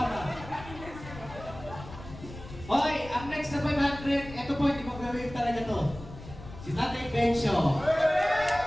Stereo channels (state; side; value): noise; left; rumble, 14 dB below the sound